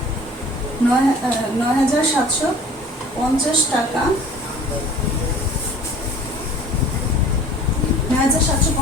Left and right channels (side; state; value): both; normal; correlation 0.47